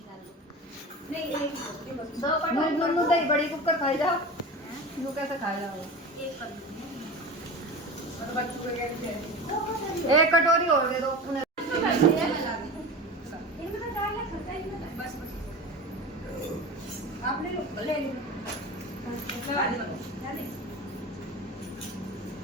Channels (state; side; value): normal; both; correlation 0.30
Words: बड़ी कुकर खाई जाओ कैसे खाई जाओ एक कटोरी और दे दो आपने ले